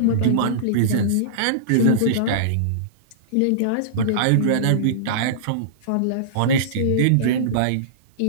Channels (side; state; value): both; different; correlation -0.03